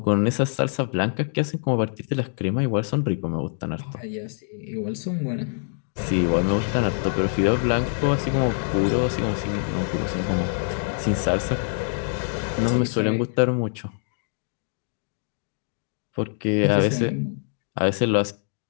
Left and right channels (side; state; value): right; silent; 62 dB below the other